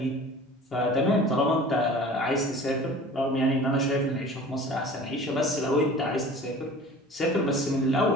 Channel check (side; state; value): both; normal; correlation 0.43